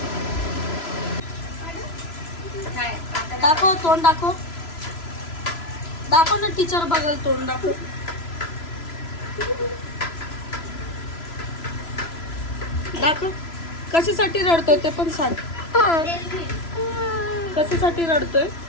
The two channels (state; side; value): late; right; 3.0 ms